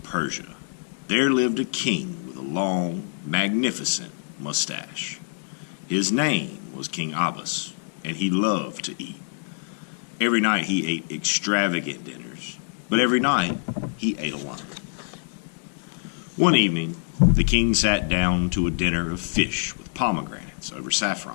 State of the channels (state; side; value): silent; right; 61 dB below the other